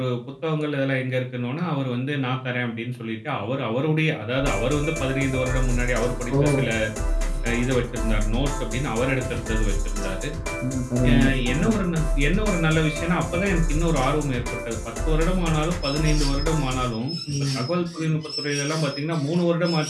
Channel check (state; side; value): identical; both; correlation 1.00